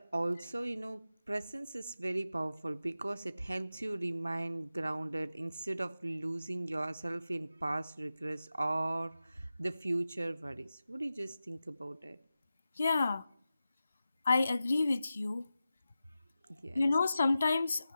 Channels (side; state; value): both; inverted; correlation -0.93